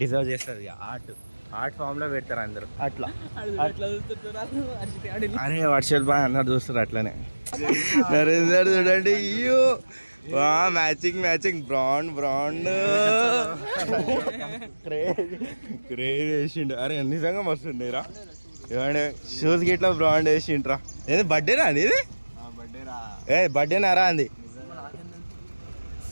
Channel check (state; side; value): inverted; both; correlation -1.00